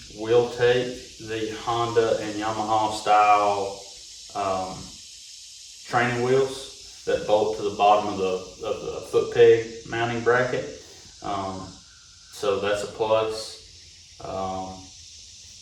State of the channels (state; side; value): identical; both; correlation 1.00